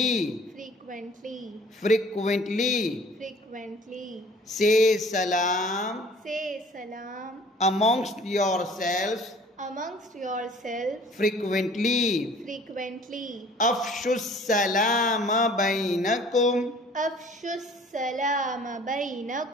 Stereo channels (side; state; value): both; normal; correlation 0.52